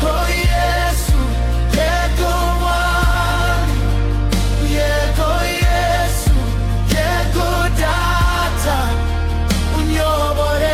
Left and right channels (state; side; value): identical; both; correlation 1.00